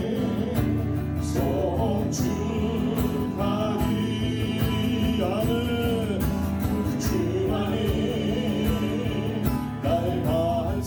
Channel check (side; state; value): both; identical; correlation 1.00